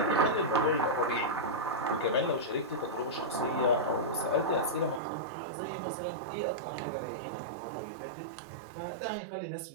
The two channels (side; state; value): left; drops out; at 5.0 s